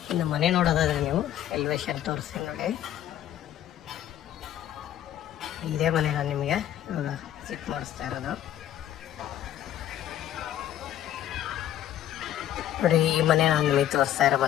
ಇನ್ನು ಮನೆ ನೋಡೋದಾದ್ರೆ ನೀವು ಎಲಿವೇಶನ್ ತೋರಿಸ್ತೀನಿ ನೋಡಿ. ಇದೇ ಮನೆ ನಾನು ನಿಮಗೆ ಇವಾಗ ವಿಸಿಟ್ ಮಾಡಿಸ್ತಾ ಇರೋದು ನೋಡಿ. ಈ ಮನೆ ನಾನು ನಿಮಗೆ ತೋರಿಸ್ತಾ ಇರೋ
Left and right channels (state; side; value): quieter; right; 11.6 dB